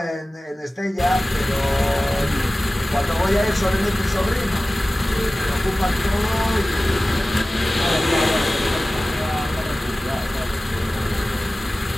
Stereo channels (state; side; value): normal; both; correlation 0.97